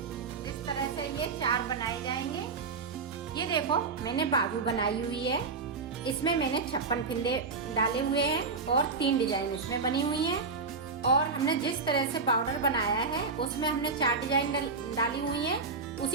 इस तरह से ये 4 बनाए जाएंगे। ये देखो मैंने बाजू बनाई हुई है। इसमें मैंने 56 फिंदे डाले हुए हैं और 3 डिजाइन इसमें बनी हुई हैं। और हमने जिस तरह से बॉर्डर बनाया है उसमें हमने 4 डिजाइन डाली हुई हैं।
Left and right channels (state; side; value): quieter; left; 4.5 dB